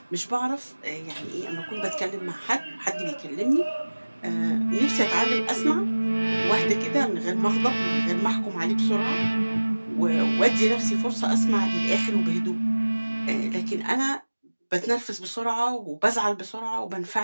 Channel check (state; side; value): inverted; both; correlation -1.00